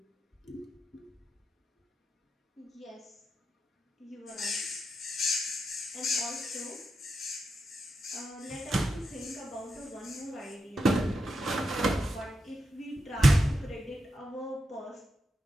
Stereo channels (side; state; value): both; normal; correlation 0.87